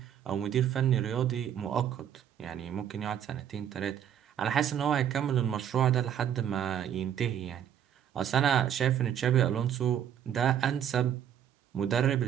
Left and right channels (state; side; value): quieter; left; 9.6 dB